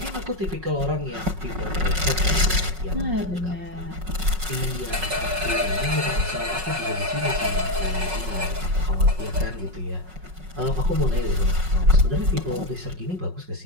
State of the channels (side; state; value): left; late; 5.4 ms